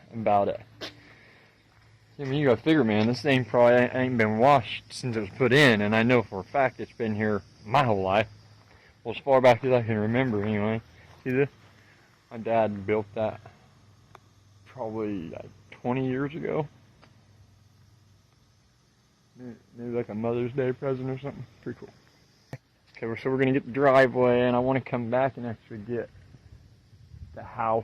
about it. I mean, you gotta figure, man, this thing probably ain't been washed since it was put in, and I know for a fact it's been here my whole life. Well, as far back as I can remember, anyway. See this? My dad built that probably like 20 years ago. Maybe like a Mother's Day present or something. Pretty cool. Okay, so we're gonna get the driveway, and I want to come back and actually get the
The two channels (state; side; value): identical; both; correlation 1.00